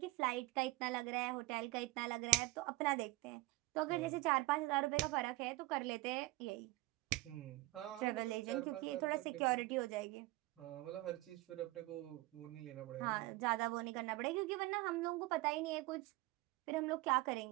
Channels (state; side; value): quieter; left; 20.5 dB